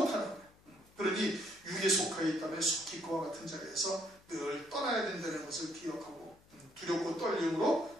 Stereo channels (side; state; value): left; noise; hum, 28 dB below the sound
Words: 거예요. 그러니 육에 속하여 있다면 속히 그와 같은 자리에서 늘 떠나야 된다는 것을 기억하고 두렵고